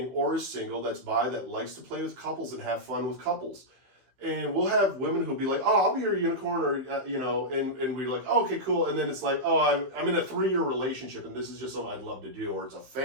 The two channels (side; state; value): left; late; 15 ms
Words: or is single that's bi that likes to play with couples and have fun with couples. And we'll have women who'll be like, "Oh, I'll be your unicorn," or you know, and we're like, "Oh, okay, cool." And then it's like, "Oh, I'm in a 3-year relationship, and this is just something I'd love to do, or it's a